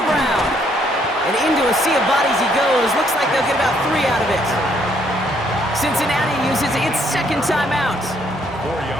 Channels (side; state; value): both; normal; correlation 0.69